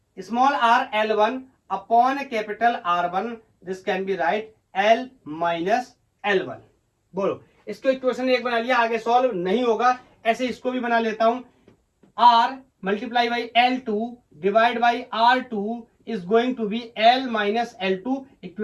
small r L1 upon capital R1, this can be right L minus L1। बोलो इसको इक्वेशन एक बना लिया, आगे सॉल्व नहीं होगा। ऐसे इसको भी बना लेता हूं, R multiply by L2 divide by R2 is going to be L minus L2,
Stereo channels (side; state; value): both; identical; correlation 1.00